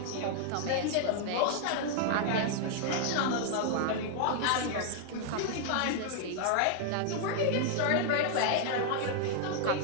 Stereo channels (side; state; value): both; different; correlation 0.00